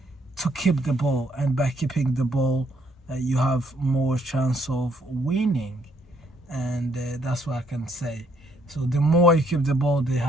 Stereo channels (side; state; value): both; normal; correlation 0.70